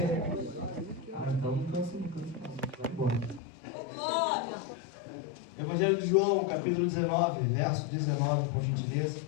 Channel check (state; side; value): drops out; right; at 3.4 s